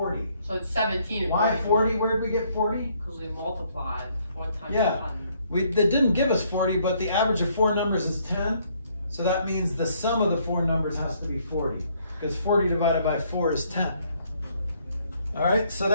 So it's 17. Why 40? Where did we get 40? Because we multiplied 4 times Yeah. 1. They didn't give us 40, but the average of 4 numbers is 10. So that means the sum of the 4 numbers has to be 40, because 40 divided by 4 is 10. All right, so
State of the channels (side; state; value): both; inverted; correlation -0.67